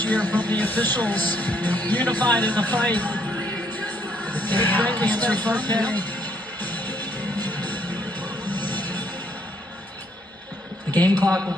year from the officials, unified in the fight. The game clock will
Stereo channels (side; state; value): both; normal; correlation 0.69